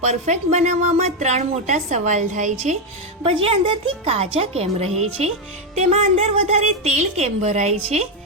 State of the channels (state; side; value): normal; both; correlation 0.05